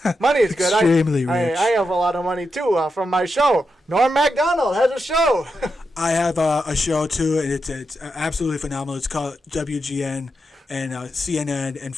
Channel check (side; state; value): both; normal; correlation 0.86